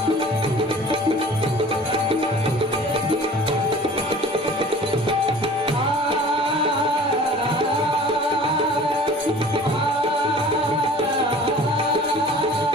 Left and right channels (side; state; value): both; normal; correlation 0.45